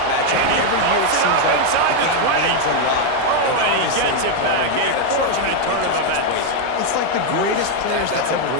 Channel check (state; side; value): different; both; correlation 0.01